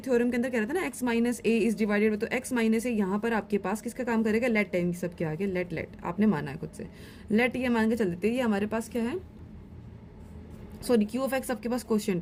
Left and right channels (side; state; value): both; identical; correlation 1.00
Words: थ्योरम के अंदर कह रहा था ना x minus A is divided, तो x माइनस ए यहाँ पर आपके पास किसका काम करेगा? लेट टाइम सबके आगे लेट आपने माना है खुद से। लेट ये मान के चल देते हैं, ये हमारे पास क्या है? सॉरी, q ऑफ x आपके पास